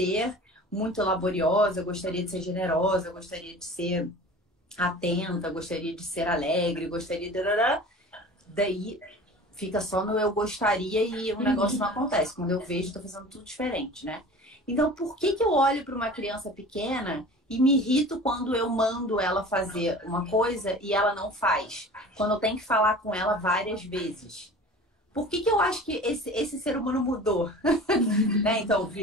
muito laboriosa, eu gostaria de ser generosa, eu gostaria de ser atenta, gostaria de ser alegre, gostaria de... Daí fica só no eu gostaria e o negócio não acontece. Quando eu vejo, estou fazendo tudo diferente, né? Então, por que eu olho para uma criança pequena e me irrito quando eu mando ela fazer uma coisa e ela não faz? Quando eu tenho que falar com ela várias vezes. Por que eu acho que esse ser humano mudou? Né? Então,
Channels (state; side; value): normal; both; correlation 0.40